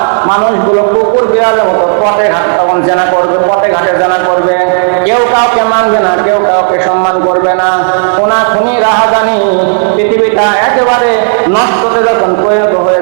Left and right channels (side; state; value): left; silent; digital silence